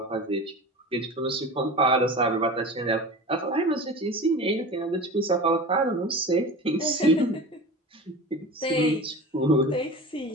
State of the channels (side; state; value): both; normal; correlation 0.33